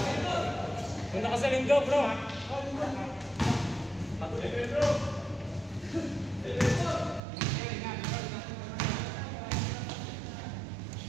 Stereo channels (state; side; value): drops out; left; at 7.2 s